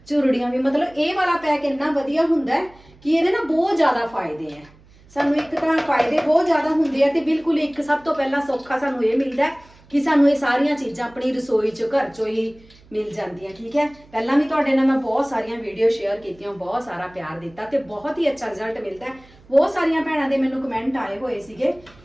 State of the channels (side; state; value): right; noise; hum, 26 dB below the sound